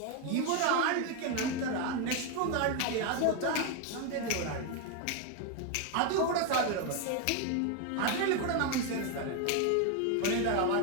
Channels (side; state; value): both; different; correlation 0.01